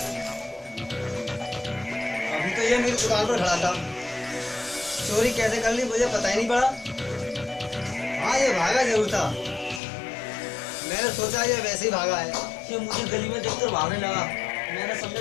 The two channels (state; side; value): drops out; right; at 9.8 s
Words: अभी तो ये मेरी दुकान पर खड़ा था। चोरी कैसे कर ली मुझे पता ही नहीं पड़ा। हाँ ये भागा जरूर था। मैंने सोचा ये वैसे ही भागा है। ये मुझे गली में देखकर भागने लगा। मैंने समझा